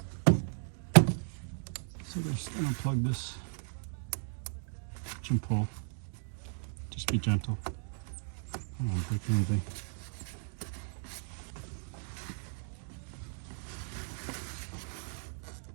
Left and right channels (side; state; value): left; silent; 54 dB below the other